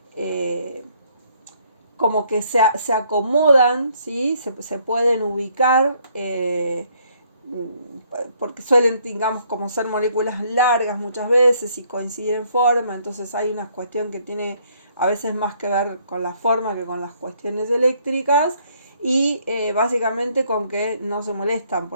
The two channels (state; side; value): inverted; both; correlation -0.67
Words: como que se acomodan, ¿sí? Se pueden ubicar, porque suelen, digamos, como ser moléculas largas muchas veces y coinciden en forma, entonces hay una cuestión que tiene a veces más que ver con la forma que con las cuestiones eléctricas, y básicamente con que no se molestan